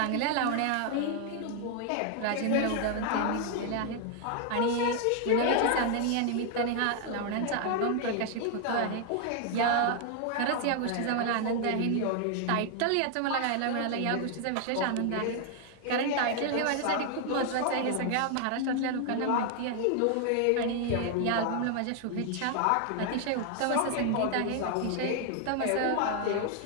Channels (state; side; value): different; both; correlation 0.00